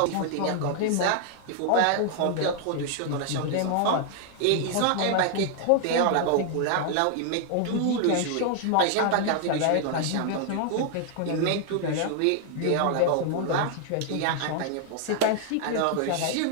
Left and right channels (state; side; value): different; both; correlation 0.00